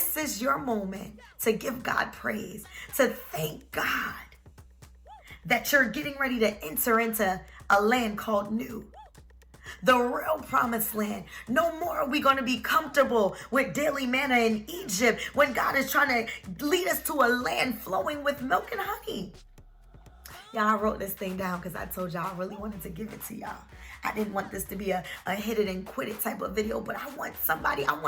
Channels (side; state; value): both; identical; correlation 1.00